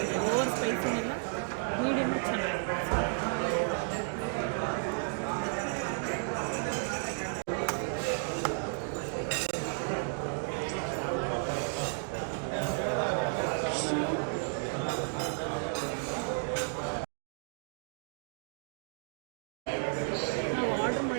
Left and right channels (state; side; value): silent; left; 56 dB below the other